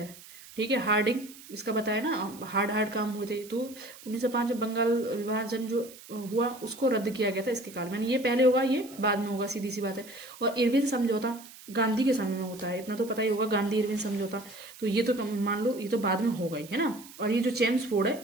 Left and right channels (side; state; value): right; noise; hiss, 18 dB below the sound